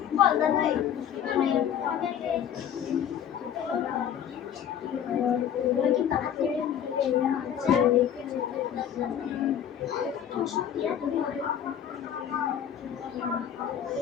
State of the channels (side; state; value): right; quieter; 9.3 dB